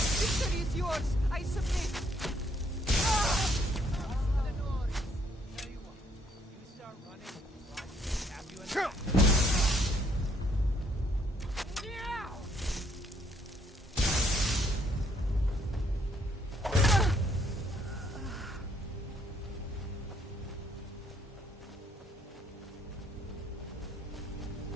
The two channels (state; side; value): normal; both; correlation 0.68